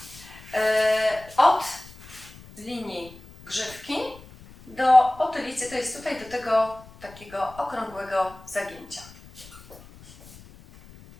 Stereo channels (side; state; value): left; noise; rumble, 21 dB below the sound